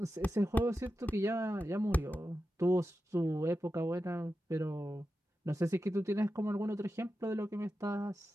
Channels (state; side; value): normal; both; correlation 0.91